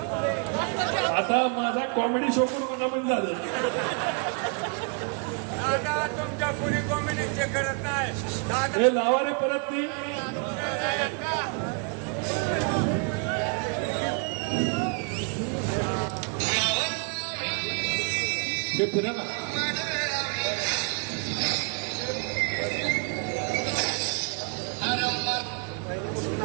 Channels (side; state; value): left; quieter; 38.4 dB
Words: आता माझा कॉमेडी शो करून मनामन झालं. तुमच्या कोणी कॉमेडी चेक करत नाही. हे लावा रे परत ती. हे फिरा ना.